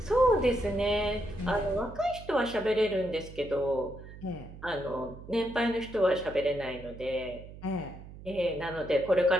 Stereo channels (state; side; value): noise; right; hum, 15 dB below the sound